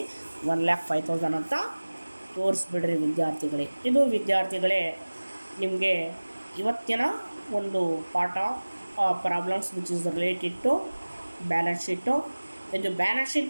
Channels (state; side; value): inverted; both; correlation -1.00